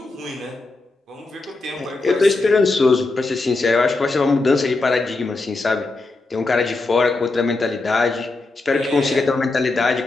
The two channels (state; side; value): quieter; right; 3.3 dB